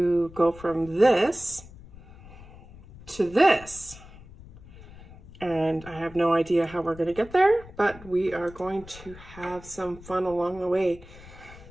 go from this to this, and I have no idea how we're going to get there, but we are going to have some fun along the way.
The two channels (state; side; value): noise; left; rumble, 19 dB below the sound